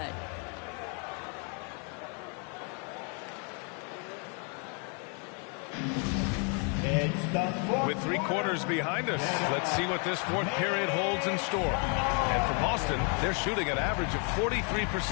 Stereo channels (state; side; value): quieter; right; 37.6 dB